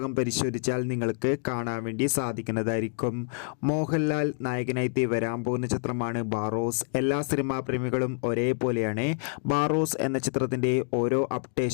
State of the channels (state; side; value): silent; right; 60 dB below the other